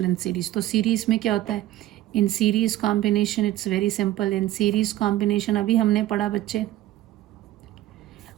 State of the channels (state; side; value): quieter; left; 14.8 dB